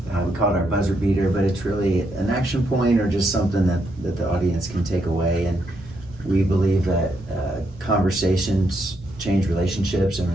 we call it our buzzer beater, but it's really an action point or just something that the audience can take away. And we believe that conversations change relationships, and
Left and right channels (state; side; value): normal; both; correlation 0.78